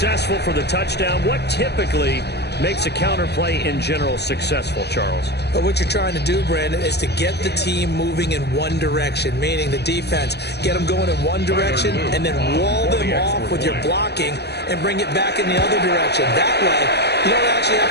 for the touchdown. What typically makes a counter play in general successful, Charles? But what you're trying to do, Brandon, is to get the team moving in one direction, meaning the defense, get them going in one direction and then wall them off with your blocking and bring it back in the other direction. That way, you don't actually have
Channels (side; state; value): right; late; 0.48 ms